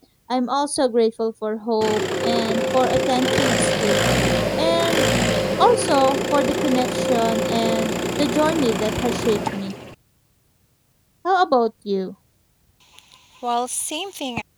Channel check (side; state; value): both; identical; correlation 1.00